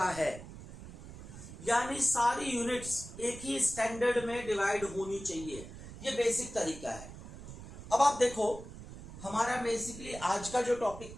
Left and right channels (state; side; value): noise; right; rumble, 13 dB below the sound